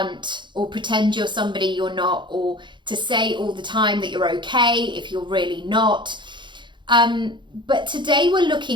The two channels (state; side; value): late; left; 0.23 ms